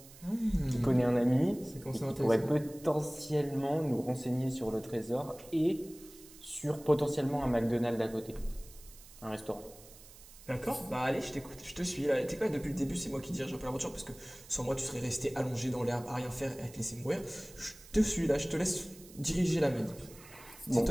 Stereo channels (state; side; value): noise; right; hiss, 20 dB below the sound